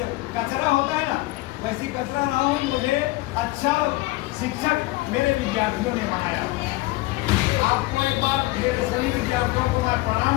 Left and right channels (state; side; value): quieter; right; 19.9 dB